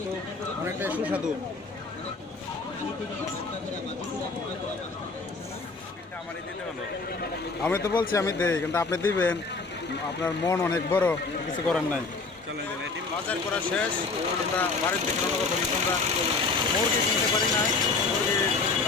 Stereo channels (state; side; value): quieter; right; 4.1 dB